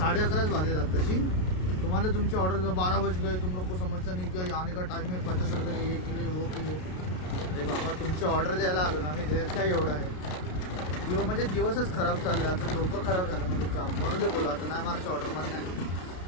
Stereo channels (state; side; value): late; right; 33 ms